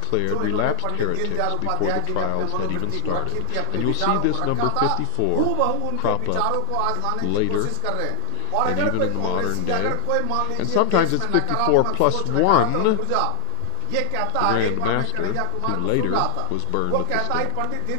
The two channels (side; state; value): both; different; correlation 0.00